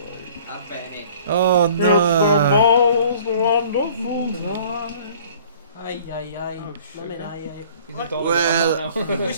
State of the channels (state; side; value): inverted; both; correlation -0.51